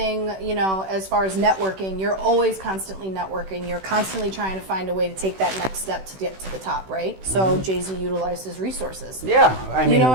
you know, as far as networking, you're always constantly networking. You're constantly trying to find a way to take that next step to get to the top, right? So Jay-Z utilized his resources. Yeah, I mean, You know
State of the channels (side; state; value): left; late; 16 ms